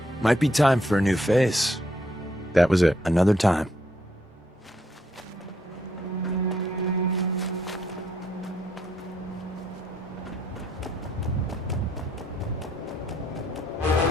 Might be time for a new face. That was it. Another time.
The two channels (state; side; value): normal; both; correlation 0.72